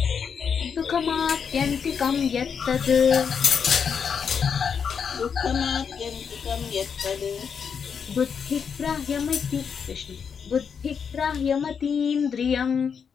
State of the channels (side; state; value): right; quieter; 6.7 dB